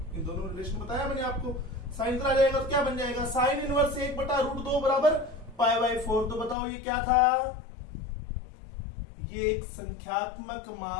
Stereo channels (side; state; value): right; drops out; at 6.6 s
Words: इन दोनों रिलेशन बताया मैंने आपको। साइन आ जाएगा तो क्या बन जाएगा, साइन इनवर्स 1/√2 बराबर π/4। तो बताओ ये क्या था, ये एक संख्यात्मक